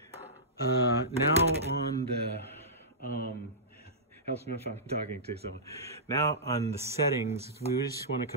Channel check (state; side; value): normal; both; correlation -0.18